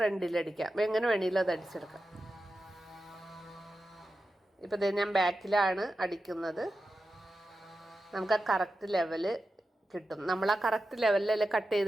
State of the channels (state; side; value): normal; both; correlation 0.92